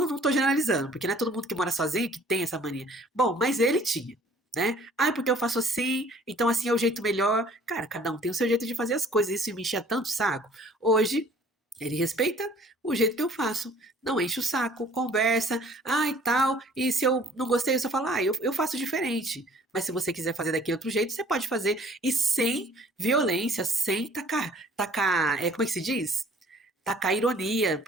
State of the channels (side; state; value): both; normal; correlation 0.55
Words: tô generalizando, porque não é todo mundo que mora sozinho que tem essa mania. Bom, mas ele tinha. Né? Ah, porque eu faço assim, então assim é o jeito melhor. Cara, cada um tem o seu jeito de fazer as coisas, isso me enchia tanto o saco. Hoje, ele respeita o jeito que eu faço, não enche o saco, conversa, ah e tal, e se eu não gostei, eu só falo, eu faço diferente. Mas se você quiser fazer daquele outro jeito, você pode fazer, e sem violência, sem tacar, como é que se diz? Tacar ironia,